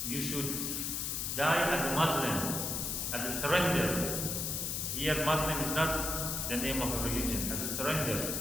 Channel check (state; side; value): noise; left; hiss, 1 dB below the sound